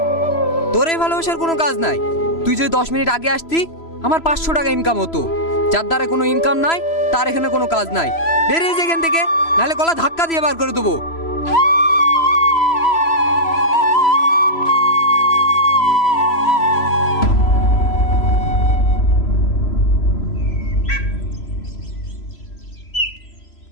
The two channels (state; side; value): late; right; 3.0 ms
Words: তোর এই ভালোবাসার কোনো কাজ নাই। তুই যদি 10 মিনিট আগে আসতি আমার 500 টাকা ইনকাম হতো। যার দ্বারা কোনো ইনকাম নাই তার এখানে কোনো কাজ নাই। বেরিয়ে যা এখান থেকে, নাহলে গলা ধাক্কা দিয়ে বার করে দেবো।